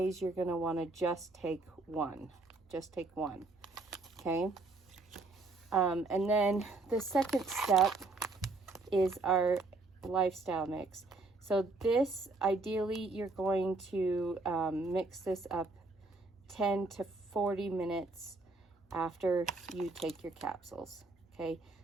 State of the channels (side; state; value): left; quieter; 3.4 dB